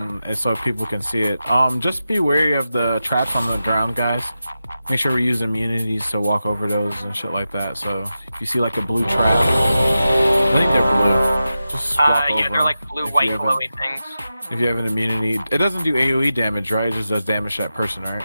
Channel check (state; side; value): inverted; both; correlation -0.92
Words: so people can see it. Just be wary of the traps on the ground, guys. Make sure we use immunities to walk over those and shit like that. So if you see like a blue trap, I think they're blue. Just walk over. Yeah, they're like blue, if white, you have glowy things. If you have an immunity, it doesn't do AOE damage, right? It just does damage to that person, right?